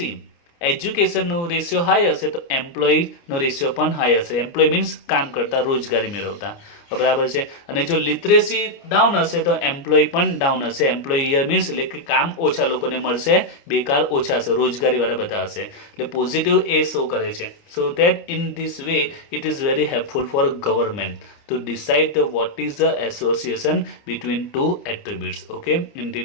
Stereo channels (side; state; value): right; late; 29 ms